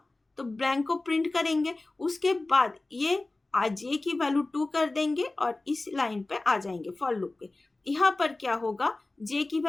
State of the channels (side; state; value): right; quieter; 3.1 dB